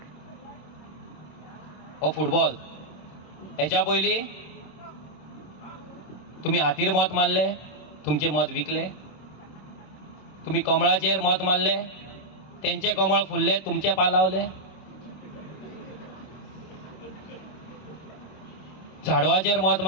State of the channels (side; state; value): right; late; 27 ms